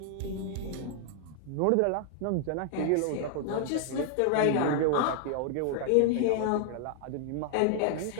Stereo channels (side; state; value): both; different; correlation 0.00